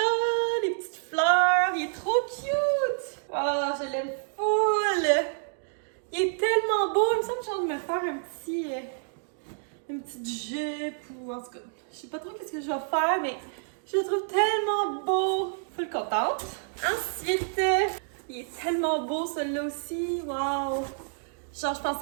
les petites fleurs, il est trop cute! Oh, je l'aime full! Il est tellement beau, il me semble que j'ai envie de me faire une petite jupe ou en tout cas, je sais pas trop qu'est-ce que je vais faire, mais je le trouve tellement beau! Full contente. Ensuite, il est tellement beau celui-là aussi. Wow! Genre, je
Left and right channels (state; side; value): silent; left; digital silence